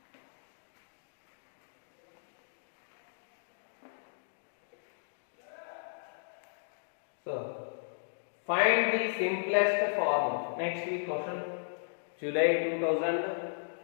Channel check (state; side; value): silent; right; digital silence